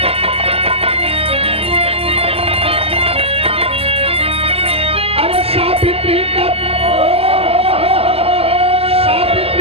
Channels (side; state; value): left; late; 0.29 ms